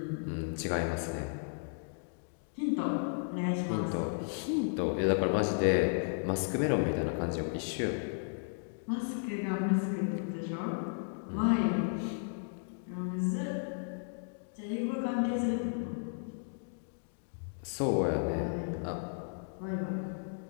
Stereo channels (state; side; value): silent; right; digital silence